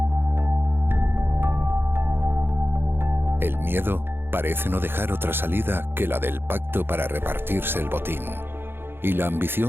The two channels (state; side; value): late; left; 0.10 ms